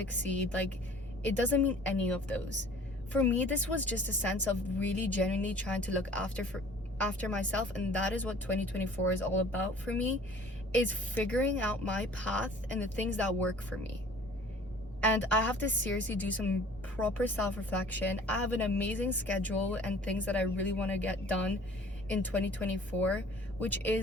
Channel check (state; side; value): normal; both; correlation 0.49